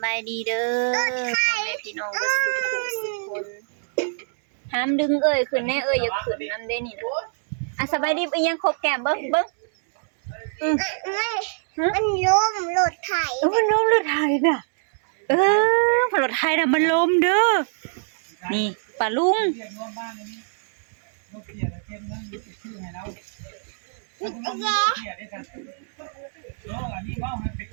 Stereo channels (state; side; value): silent; left; digital silence